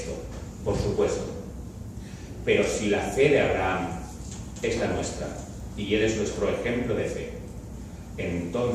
por supuesto, pero si la fe de Abraham es la nuestra y él es nuestro ejemplo de fe,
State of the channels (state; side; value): identical; both; correlation 1.00